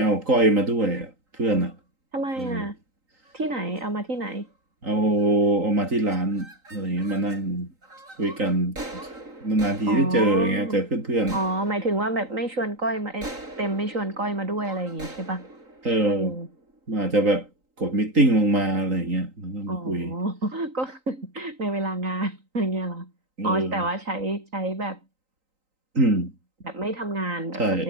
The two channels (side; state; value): left; late; 3.9 ms